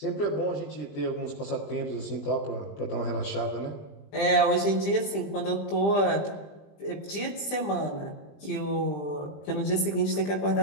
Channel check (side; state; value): right; late; 20 ms